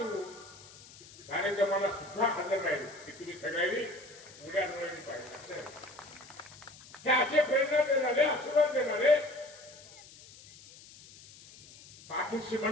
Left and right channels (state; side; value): noise; left; hiss, 20 dB below the sound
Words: कार्यक्रमाला सुद्धा हजर राहील की तुम्ही सगळ्यांनी उड्या डोळ्यांनी पाहिजे. हे असे प्रेरणा देणारे, आशीर्वाद देणारे पाठीशी